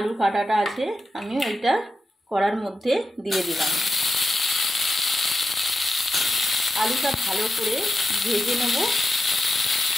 কাটাটা আছে, আমি ওইটা কড়ার মধ্যে দিয়ে দিলাম। আলুটা ভালো করে ভেজে নেব।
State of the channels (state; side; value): normal; both; correlation 0.90